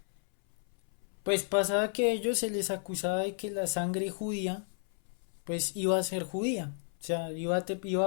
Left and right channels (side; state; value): right; silent; 56 dB below the other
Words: pues pasaba que a ellos se les acusaba de que la sangre judía pues iba a ser judía, o sea, iba